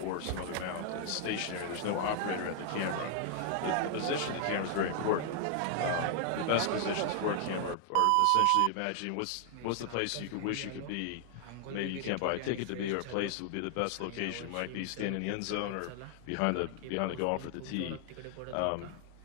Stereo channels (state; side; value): different; both; correlation 0.00